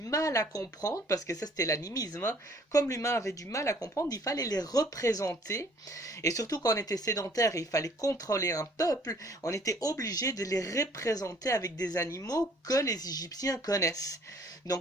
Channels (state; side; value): normal; both; correlation 0.58